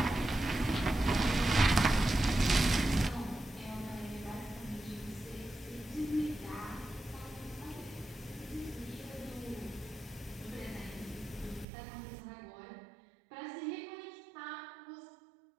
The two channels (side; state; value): left; drops out; at 11.7 s